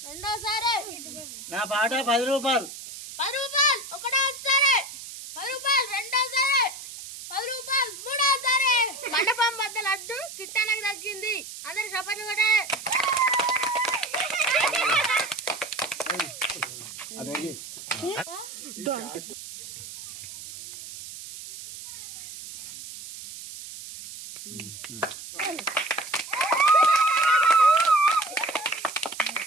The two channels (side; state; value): right; noise; hiss, 12 dB below the sound